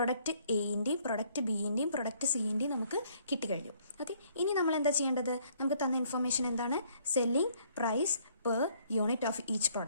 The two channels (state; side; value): inverted; both; correlation -0.64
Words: എൻ്റെയും പ്രൊഡക്റ്റ് ബിൻ്റെയും പ്രൊഡക്റ്റ് സിൻ്റെയും നമുക്ക് കിട്ടിക്കഴിഞ്ഞു. ഓക്കെ, ഇനി നമ്മൾ എന്താ ചെയ്യേണ്ടത്? നമുക്ക് തന്ന ഇൻഫർമേഷൻ എന്താണ്? Selling price per unit of each